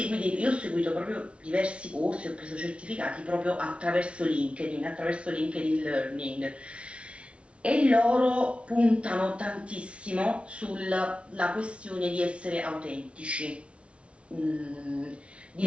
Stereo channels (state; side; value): late; left; 0.060 ms